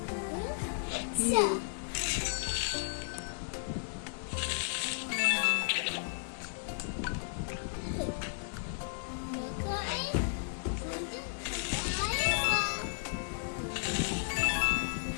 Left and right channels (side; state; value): right; silent; digital silence